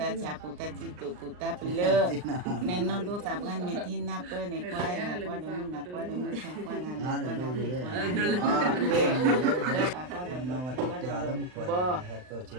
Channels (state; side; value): late; left; 39 ms